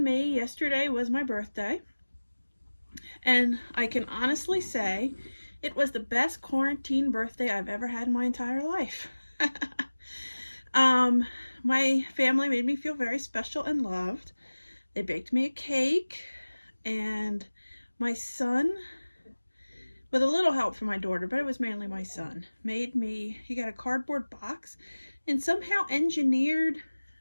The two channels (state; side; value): inverted; both; correlation -1.00